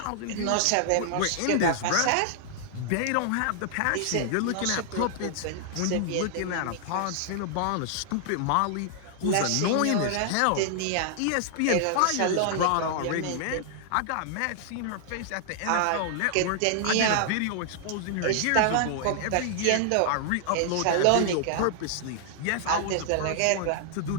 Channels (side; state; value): both; different; correlation -0.01